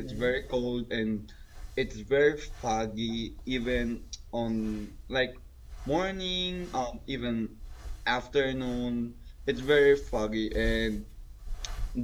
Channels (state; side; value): identical; both; correlation 1.00